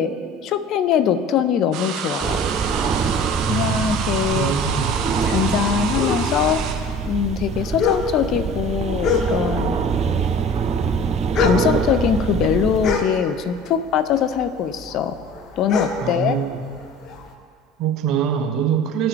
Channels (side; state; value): both; normal; correlation 0.43